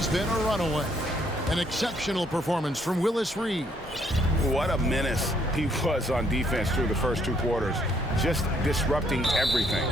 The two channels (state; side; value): normal; both; correlation 0.69